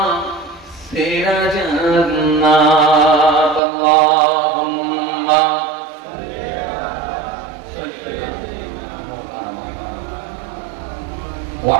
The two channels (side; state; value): left; drops out; at 3.6 s